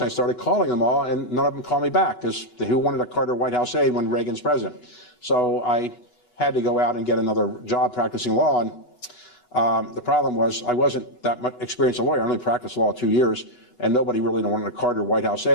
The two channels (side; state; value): right; late; 8.1 ms